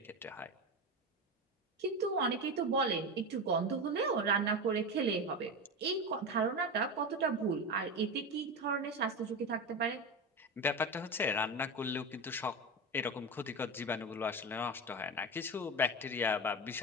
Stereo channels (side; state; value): both; normal; correlation 0.20